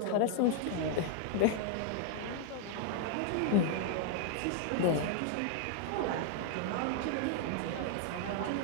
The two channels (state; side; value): different; both; correlation 0.00